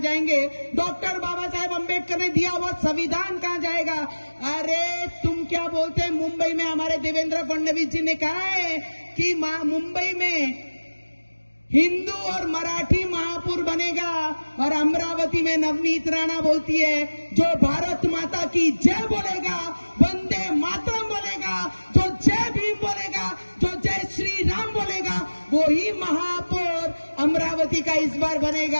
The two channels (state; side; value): inverted; both; correlation -1.00